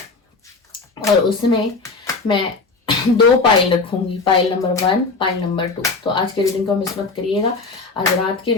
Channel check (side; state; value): right; quieter; 4.0 dB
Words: और उसमें मैं 2 पाइल रखूंगी, पाइल नंबर 1, पाइल नंबर 2। तो आज की रीडिंग को मिस मत करिएगा, आज रात की